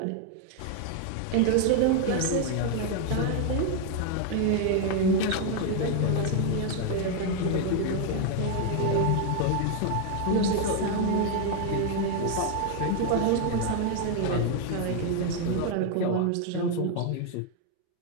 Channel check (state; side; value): different; both; correlation 0.00